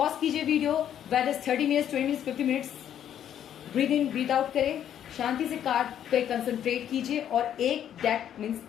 कीजिए video, whether is 30 minutes, 20 minutes, 50 minutes. Breathe in breathe out करें, शांति से कार्ड पे कंसंट्रेट कीजिए और एक डेक मीन्स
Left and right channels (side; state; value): right; quieter; 10.1 dB